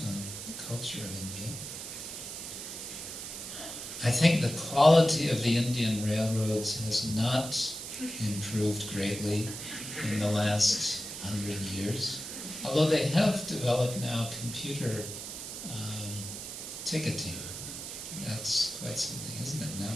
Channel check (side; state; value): right; noise; hiss, 8 dB below the sound